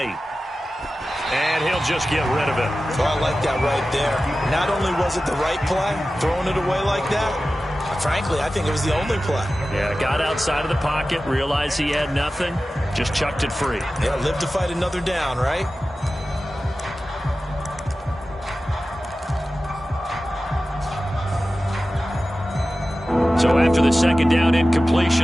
And he'll just get rid of it. Oh, I like that right there. Not only was it the right play, throwing it away like that, frankly, I think it was the only play. Yeah, got outside of the pocket, realized he had nothing, just chucked it free. Yeah, live to fight another down, right? So after the 2nd down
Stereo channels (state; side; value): normal; both; correlation 0.95